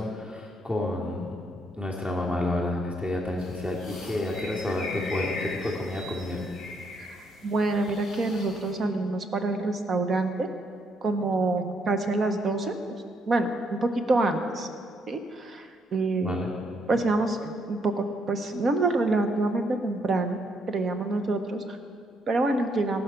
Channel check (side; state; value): both; normal; correlation 0.73